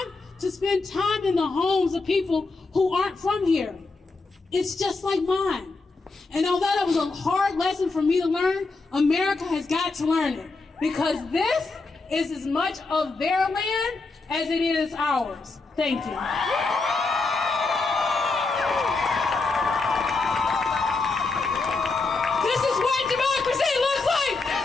to spend time in the homes of people who aren't from here. It's just like mine. And although that was a hard lesson for me to learn, America has got to learn it, because this is as much of their land as it is ours. Thank you. This is what democracy looks like.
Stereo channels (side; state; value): right; quieter; 3.8 dB